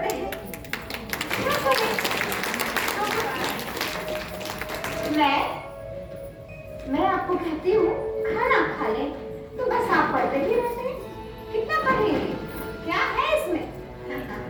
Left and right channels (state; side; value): identical; both; correlation 1.00